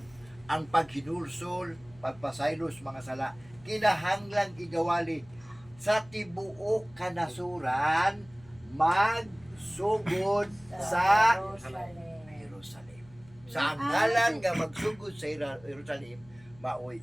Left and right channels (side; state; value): left; noise; hum, 25 dB below the sound